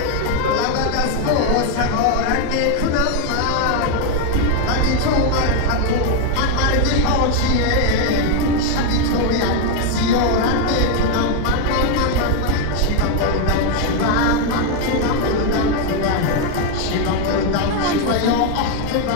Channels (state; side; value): different; both; correlation 0.01